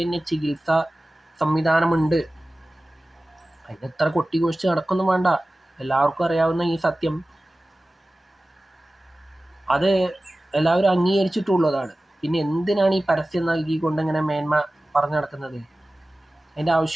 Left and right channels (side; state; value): both; normal; correlation 0.97